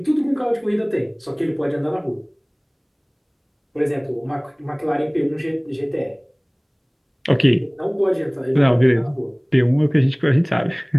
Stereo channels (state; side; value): identical; both; correlation 1.00